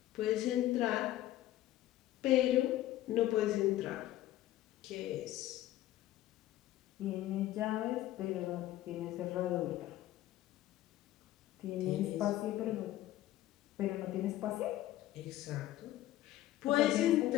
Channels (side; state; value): right; quieter; 14.3 dB